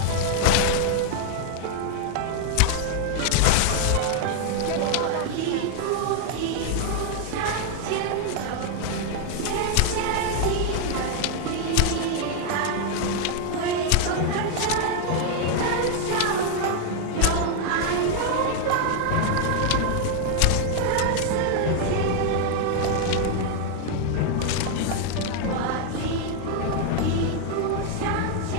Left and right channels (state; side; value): different; both; correlation 0.00